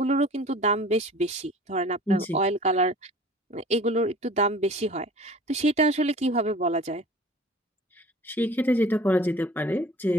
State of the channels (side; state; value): both; normal; correlation 0.45